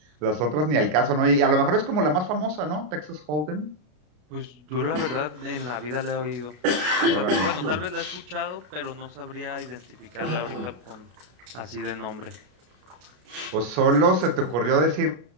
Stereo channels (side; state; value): left; late; 33 ms